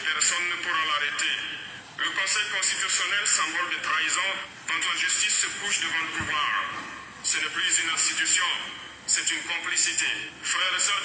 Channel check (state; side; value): identical; both; correlation 1.00